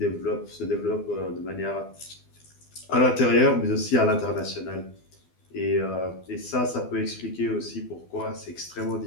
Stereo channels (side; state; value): right; late; 12 ms